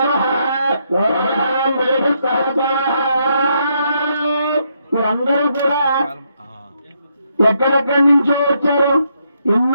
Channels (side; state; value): both; inverted; correlation -0.77